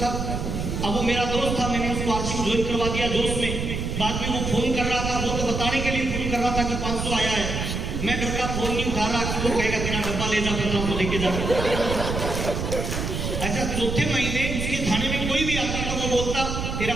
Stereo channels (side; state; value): right; noise; rumble, 3 dB below the sound